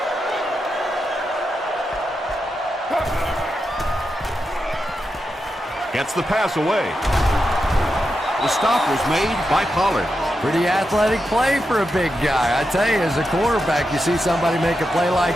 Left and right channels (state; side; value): normal; both; correlation 0.87